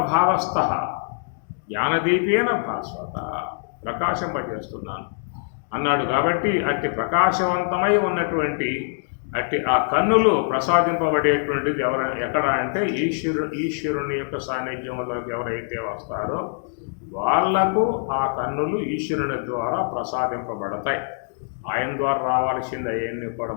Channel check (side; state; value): right; silent; digital silence